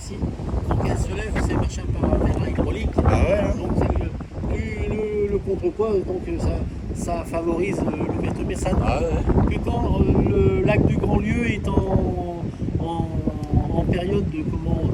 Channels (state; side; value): identical; both; correlation 1.00